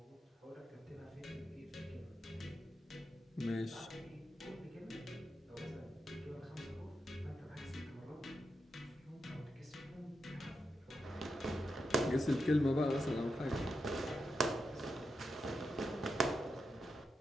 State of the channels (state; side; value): normal; both; correlation 0.86